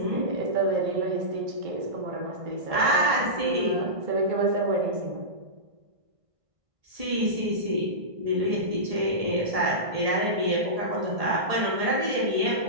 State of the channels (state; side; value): late; left; 1.5 ms